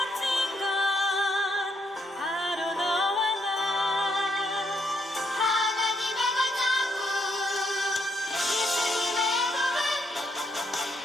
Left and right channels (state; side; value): normal; both; correlation 0.75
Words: 건 바로 너와 나 하나님의 걸작품 예수님의 복음